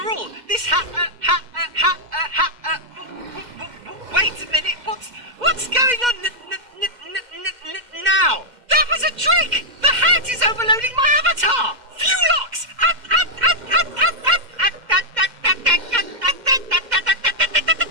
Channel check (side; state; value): left; late; 2.1 ms